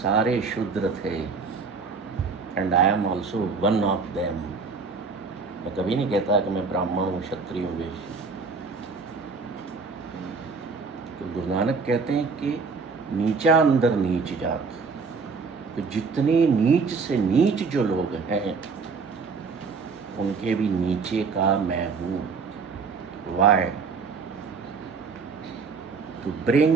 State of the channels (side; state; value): left; quieter; 4.8 dB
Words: शूद्र थे, and I am also one of them. मैं कभी नहीं कहता कि मैं ब्राह्मण हूँ, क्षत्रिय हूँ, वैश्य हूँ। तो गुरु नानक कहते हैं कि नीचा अंदर नीच जात, तो जितने नीच से नीच जो लोग हैं उनके भी नीचे का मैं हूँ। Why? To